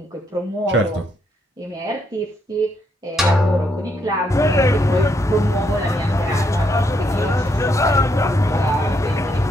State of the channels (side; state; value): both; normal; correlation 0.76